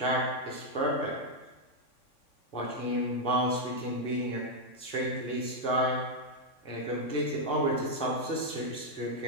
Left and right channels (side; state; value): right; late; 3.5 ms